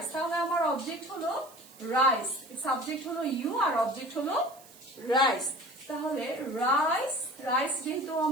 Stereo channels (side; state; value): right; noise; hiss, 22 dB below the sound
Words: তাহলে আমার অবজেক্ট হলো রাইস, সাবজেক্ট হলো ইউ আর অবজেক্ট হলো রাইস। তাহলে রাইস, রাইস যেহেতু